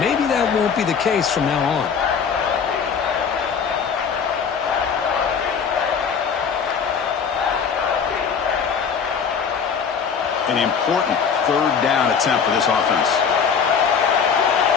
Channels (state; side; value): quieter; right; 6.5 dB